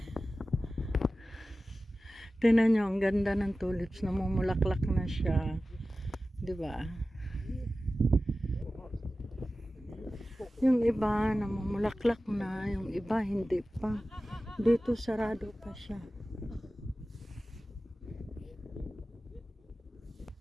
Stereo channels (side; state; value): both; normal; correlation 0.95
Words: Tingnan nyo, ang ganda ng tulips, namumulaklak na siya. Diba? Yung iba namumulaklak na, yung iba hindi pa. Dito sarado pa siya.